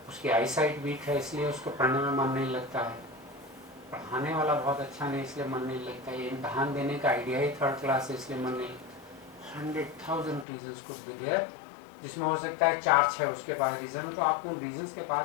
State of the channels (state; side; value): drops out; right; at 10.5 s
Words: उसकी आई साइट वीक है इसलिए उसको पढ़ने में मन नहीं लगता है, पढ़ाने वाला बहुत अच्छा नहीं इसलिए मन नहीं लगता है, इम्तहान देने का आइडिया ही थर्ड क्लास है इसलिए मन नहीं। 100,000 रीजन्स कुछ भी देर, जिसमें हो सकता है 4-6 उसके पास रीजन, तो आपको उन रीजन्स के